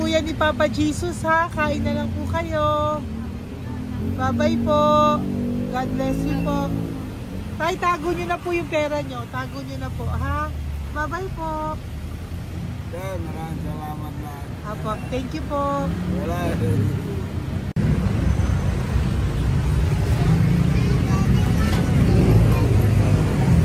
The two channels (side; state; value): both; identical; correlation 1.00